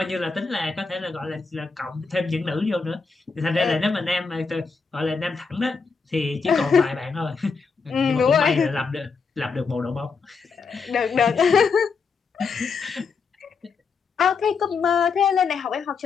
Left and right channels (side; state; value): right; quieter; 5.0 dB